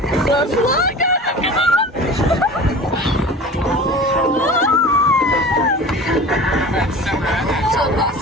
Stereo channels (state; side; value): normal; both; correlation 0.38